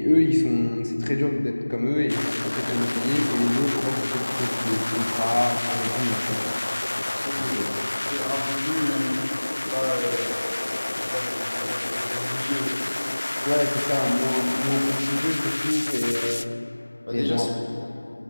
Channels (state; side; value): inverted; both; correlation -1.00